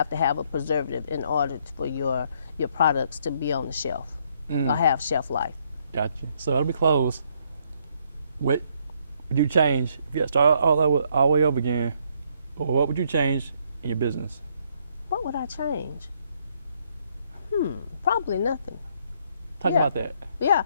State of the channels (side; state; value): both; inverted; correlation -0.69